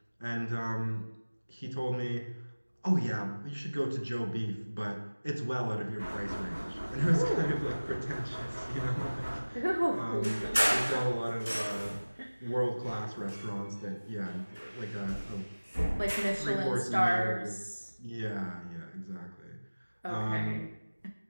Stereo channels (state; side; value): inverted; both; correlation -1.00